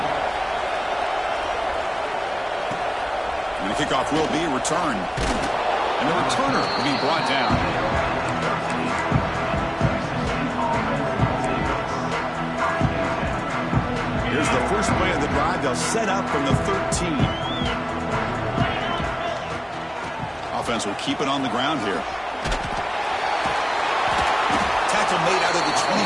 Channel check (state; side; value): identical; both; correlation 1.00